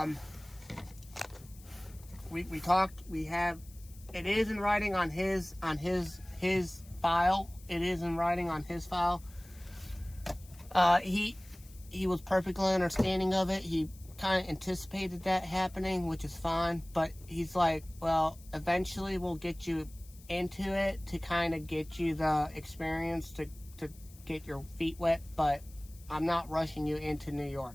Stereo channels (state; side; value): noise; left; hiss, 23 dB below the sound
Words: we talked. We have. It is in writing on his file. It is in writing on his file. He was perfectly understanding of it. He kind of anticipated that happening, which is fine. But he's like, well, eventually we'll get you into it to kind of get you the experience to get your feet wet. But I'm not rushing you into New